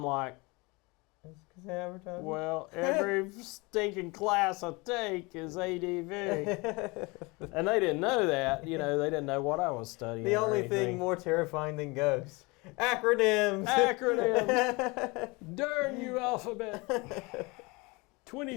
like, because they advertise. Well, every stinking class I take is ADV. And they didn't know that. They didn't know what I was studying. The only thing more terrifying than ghosts. Acronyms. Darn you, alphabet.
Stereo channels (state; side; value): quieter; right; 26.0 dB